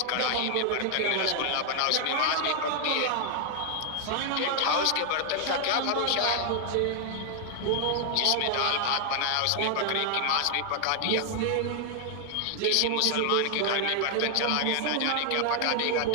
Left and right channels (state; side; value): different; both; correlation 0.00